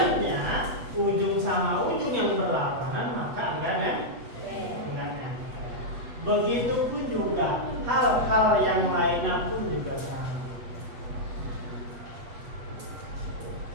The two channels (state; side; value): late; left; 8.2 ms